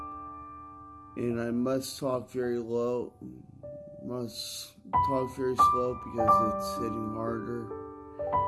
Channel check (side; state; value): both; identical; correlation 1.00